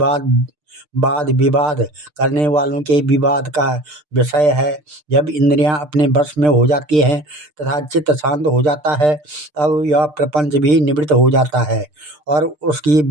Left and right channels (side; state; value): left; late; 6.7 ms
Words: वाद विवाद करने वालों के विवाद का विषय है। जब इंद्रियां अपने वश में हो जाती हैं तथा चित्त शांत हो जाता है, तब यह प्रपंच भी निवृत्त हो जाता है और उसकी